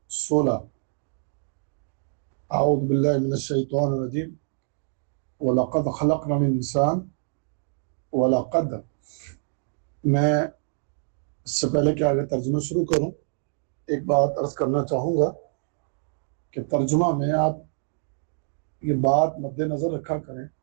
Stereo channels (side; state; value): left; silent; digital silence